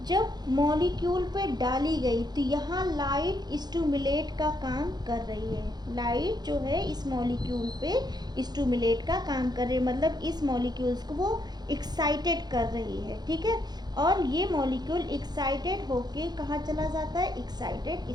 जब मॉलिक्यूल पे डाली गई तो यहाँ लाइट स्टिमुलेट का काम कर रही है। लाइट जो है इस मॉलिक्यूल पे स्टिमुलेट का काम कर रही है, मतलब इस मॉलिक्यूल्स को वो एक्साइटेड कर रही है। ठीक है, और ये मॉलिक्यूल एक्साइटेड होके कहाँ चला जाता है? एक्साइटेड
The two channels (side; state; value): left; late; 0.20 ms